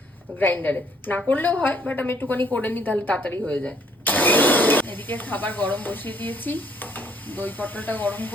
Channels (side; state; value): both; normal; correlation 0.64